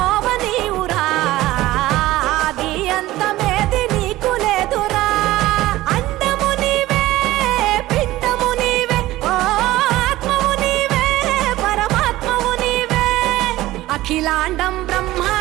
నీవురా ఆది అంతమేది నీకు లేదురా అండము నీవే పిండము నీవే ఓ ఆత్మవు నీవే పరమాత్మవు నీవే అఖిలాండం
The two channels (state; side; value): quieter; left; 16.7 dB